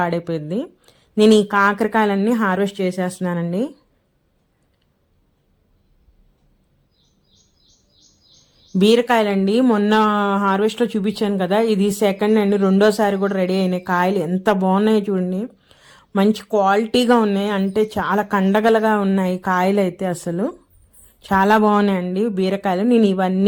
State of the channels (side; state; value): both; identical; correlation 1.00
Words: నేను ఈ కాకరకాయలన్నీ హార్వెస్ట్ చేసేస్తున్నానండి. బీరకాయలండి మొన్న హార్వెస్ట్లో చూపించాను కదా, ఇది సెకండ్ అండి, రెండోసారి కూడా రెడీ అయినాయి. కాయలు ఎంత బాగున్నాయి చూడండి, మంచి క్వాలిటీగా ఉన్నాయి, అంటే చాలా కండగలగా ఉన్నాయి కాయలు అయితే, అసలు చాలా బాగున్నాయండి బీరకాయలు. నేను